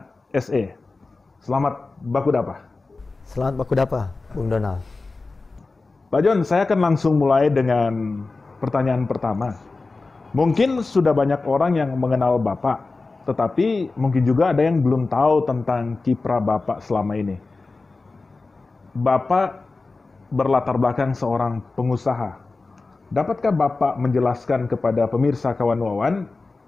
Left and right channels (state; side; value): quieter; right; 3.7 dB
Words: SE. Selamat Bakudapa. Selamat Bakudapa, Bung Donald. Pak Jon, saya akan langsung mulai dengan pertanyaan pertama. Mungkin sudah banyak orang yang mengenal Bapak, tetapi mungkin juga ada yang belum tahu tentang kiprah Bapak selama ini. Bapak berlatar belakang seorang pengusaha. Dapatkah Bapak menjelaskan kepada pemirsa Kawanuawan